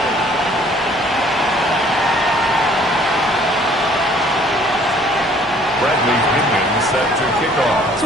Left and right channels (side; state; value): both; normal; correlation 0.58